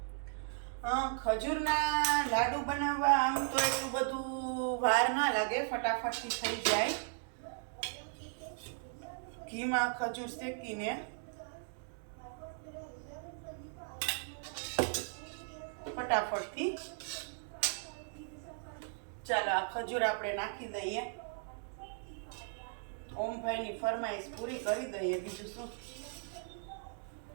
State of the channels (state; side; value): silent; left; digital silence